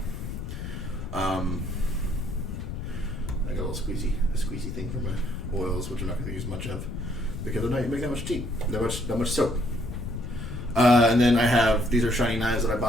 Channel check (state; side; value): noise; left; rumble, 6 dB below the sound